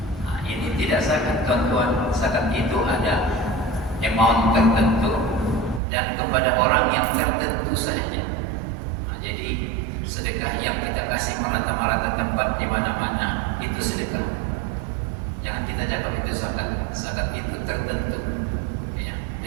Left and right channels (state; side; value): drops out; left; at 5.8 s